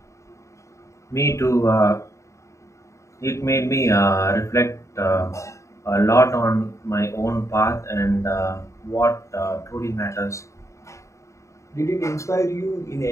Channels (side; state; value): right; late; 0.14 ms